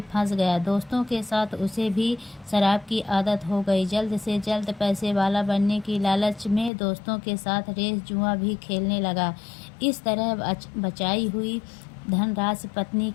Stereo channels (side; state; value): right; drops out; at 6.7 s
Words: फंस गया। दोस्तों के साथ उसे भी शराब की आदत हो गई। जल्द से जल्द पैसे वाला बनने की लालच में दोस्तों के साथ रेस, जुआ भी खेलने लगा। इस तरह बचाई हुई धनराशि, पत्नी